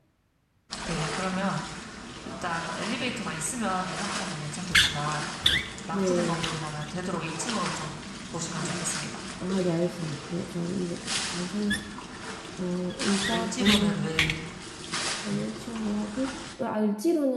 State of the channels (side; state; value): both; identical; correlation 1.00